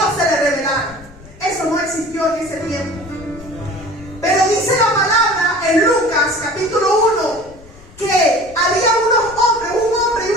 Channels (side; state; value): left; noise; rumble, 22 dB below the sound